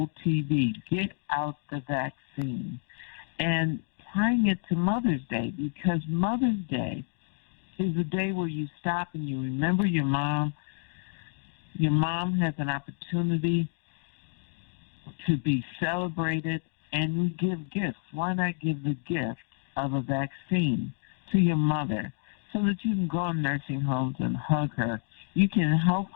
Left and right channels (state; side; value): silent; right; 58 dB below the other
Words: get out the vaccine. And tying it to Mother's Day, because Mother's Day is a day where you stop and you remember your mom. Your mom has an opportunity to be celebrated, and we give gifts. Why not give the gift of a vaccine to your mother so that you can go in nursing homes and hug her? You can help